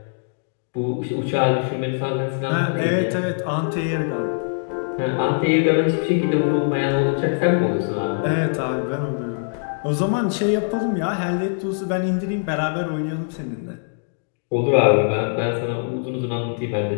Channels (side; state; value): right; silent; digital silence